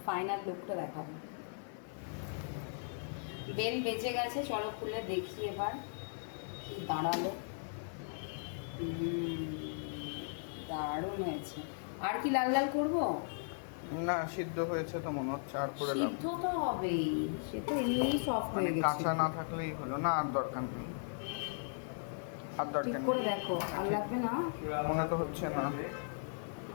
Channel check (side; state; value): right; silent; 53 dB below the other